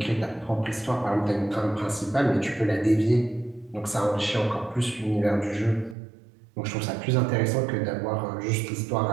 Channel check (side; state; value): left; drops out; at 6.0 s